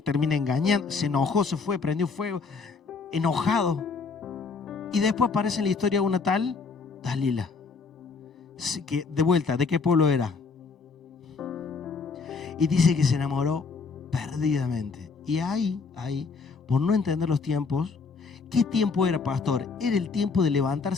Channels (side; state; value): right; quieter; 4.7 dB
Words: engañando, se enojó, se fue, prendió fuego, enojado. Y después aparece en la historia una tal Dalila, que de vuelta, ¿de qué pueblo era? Y dice que se enamoró perdidamente. Y ahí, por no entender los tiempos, ¿qué tiempo era, pastor? Era el tiempo de